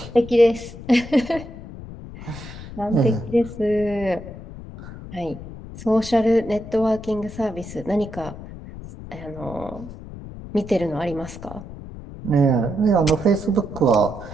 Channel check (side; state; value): left; noise; rumble, 13 dB below the sound